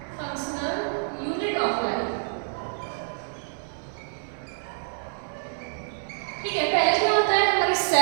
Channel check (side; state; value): left; silent; 60 dB below the other